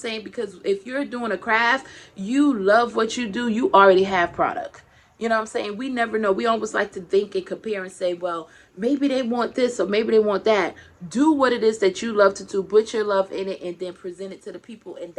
Because if you're doing a craft, you love what you do, you already have product. You know what I'm saying? We never know. We always like to think and compare and say, well, maybe they want this or maybe they want that. Do what it is that you love to do. Put your love in it and then present it to the people. And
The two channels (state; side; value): identical; both; correlation 1.00